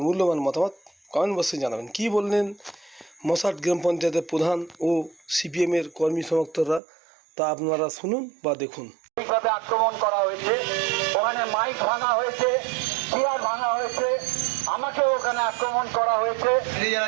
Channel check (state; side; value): drops out; left; at 6.8 s